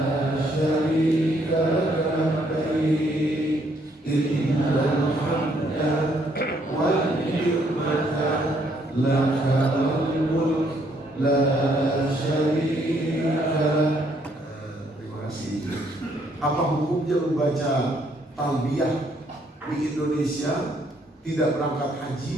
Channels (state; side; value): normal; both; correlation 0.69